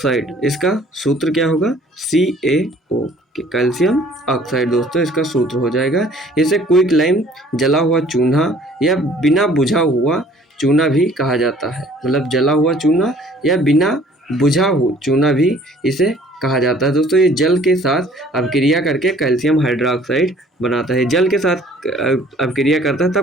इसका सूत्र क्या होगा? CaO, कैल्शियम ऑक्साइड दोस्तों इसका सूत्र हो जाएगा। इसे क्विक लाइम, जला हुआ चूना या बिना बुझा हुआ चूना भी कहा जाता है, मतलब जला हुआ चूना या बिना बुझा हुआ चूना भी इसे कहा जाता है दोस्तों। ये जल के साथ अभिक्रिया करके कैल्शियम हाइड्रोक्साइड बनाता है, जल के साथ अभिक्रिया करता है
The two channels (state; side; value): normal; both; correlation 0.55